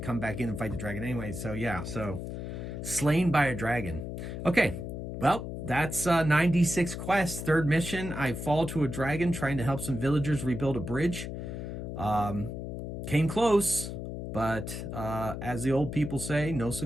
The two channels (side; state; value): left; noise; hum, 6 dB below the sound